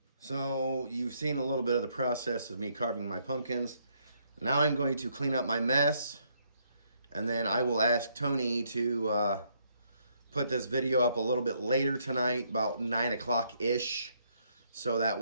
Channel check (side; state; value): both; inverted; correlation -0.71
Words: So you've seen a little bit of the process of me carving my pumpkins. Now I'm going to clean up my mess. And then I will ask Tony to put this video up a little bit later tonight, about 9 o'clock-ish. So that